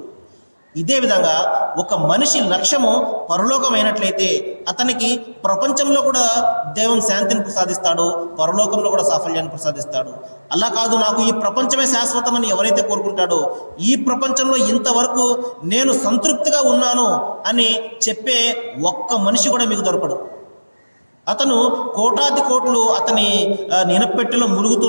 ఇదే విధంగా ఒక మనిషి లక్ష్యము పరలోకమైనట్లయితే అతనికి ప్రపంచంలో కూడా దేవుని శాంతిని ప్రసాదిస్తాడు, పరలోకంలో కూడా సాఫల్యాన్ని ప్రసాదిస్తాడు. అలా కాదు, నాకు ఈ ప్రపంచమే శాశ్వతమని ఎవరైతే కోరుకుంటాడో, ఈ ప్రపంచంలో ఇంతవరకు నేను సంతృప్తిగా ఉన్నాను అని చెప్పే ఒక్క మనిషి కూడా మీకు దొరకడు. అతను కోటాది కోట్లు అతని నినపెట్టెలో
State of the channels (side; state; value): both; inverted; correlation -1.00